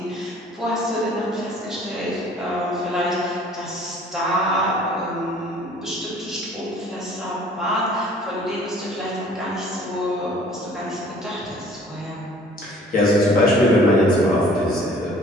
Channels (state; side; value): normal; both; correlation 0.53